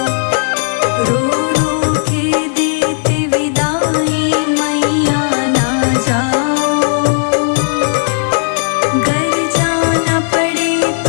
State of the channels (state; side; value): silent; right; digital silence